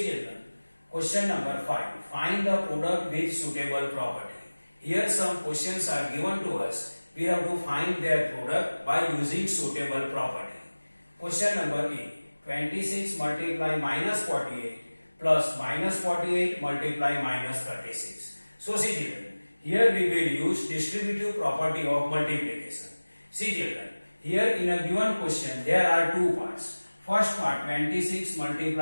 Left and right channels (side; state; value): both; inverted; correlation -1.00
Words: children, question number 5. Find the product with suitable property. Here some questions are given to us. We have to find their product by using suitable property. Question number A. 26 multiply minus 48 plus minus 48 multiply minus 36. So see children, here we will use distributive property of multiplication. See children, here in a given question there are two parts. First part 26